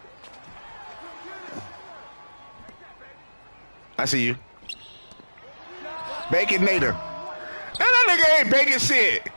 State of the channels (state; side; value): inverted; both; correlation -1.00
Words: I see you. Baconator. That nigga ain't baking shit.